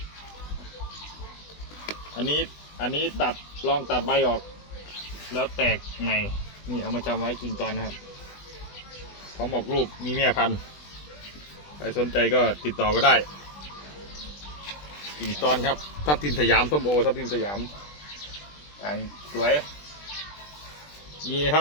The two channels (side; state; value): right; late; 20 ms